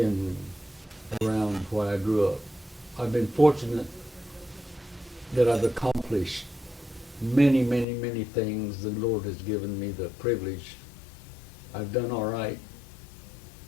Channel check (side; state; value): right; drops out; at 7.9 s